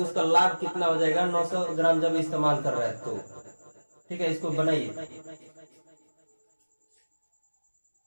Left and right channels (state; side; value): inverted; both; correlation -1.00